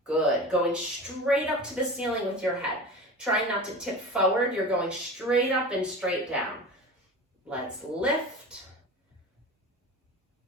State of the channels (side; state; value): both; normal; correlation 0.33